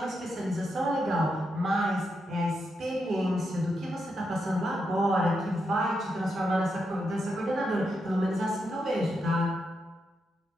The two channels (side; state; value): both; normal; correlation 0.83